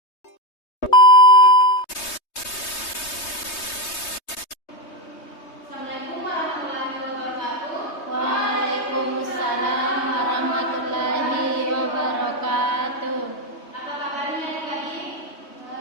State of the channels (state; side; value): late; right; 3.2 ms